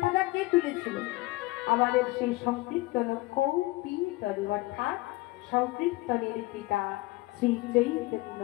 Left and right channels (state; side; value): quieter; right; 21.0 dB